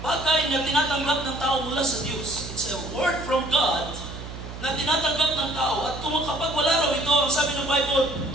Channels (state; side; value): noise; right; hum, 11 dB below the sound